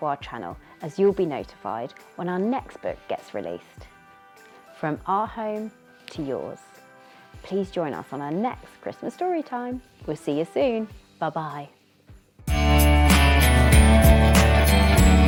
our channel, as you'll be notified when our next book gets released. From our home to yours. Please join us on our next Christmas story time. We'll see you soon. Bye bye.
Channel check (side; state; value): both; identical; correlation 1.00